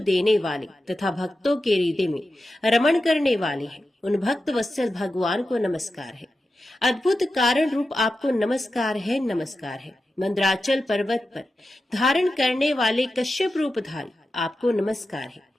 वाले तथा भक्तों के हृदय में रमण करने वाले हैं, उन भक्त वत्सल भगवान को नमस्कार है। अद्भुत कारण रूप आपको नमस्कार है, नमस्कार है। मंद्राचल पर्वत पर धारण करने वाले कश्यप रूपधारी आपको नमस्कार है।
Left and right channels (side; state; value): both; normal; correlation 0.91